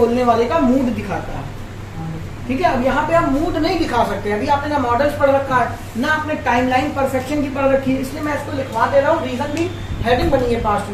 वाले का मूड दिखाता है, ठीक है। अब यहाँ पे आप मूड नहीं दिखा सकते, अभी आपने ना मॉडल्स पढ़ रखा है ना आपने टाइमलाइन परफेक्शन की पढ़ रखी है, इसलिए मैं इसको लिखवा दे रहा हूँ। रीजन भी हेडिंग बनी है पास्ट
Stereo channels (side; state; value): both; identical; correlation 1.00